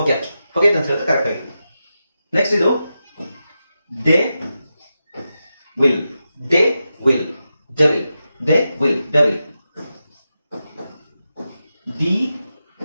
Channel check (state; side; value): inverted; both; correlation -0.90